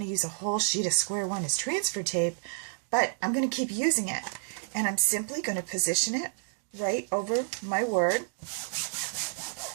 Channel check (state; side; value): silent; left; digital silence